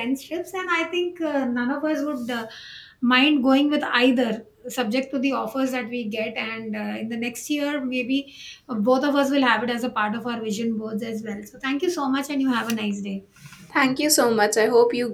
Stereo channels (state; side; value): identical; both; correlation 1.00